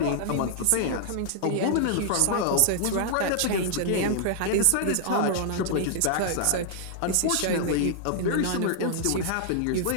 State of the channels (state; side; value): different; both; correlation -0.01